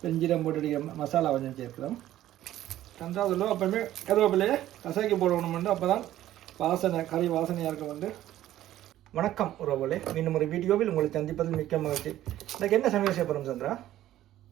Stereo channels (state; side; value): quieter; left; 13.4 dB